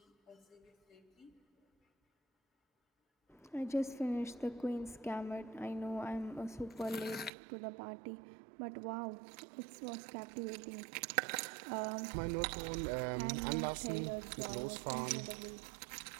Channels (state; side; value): drops out; left; at 7.3 s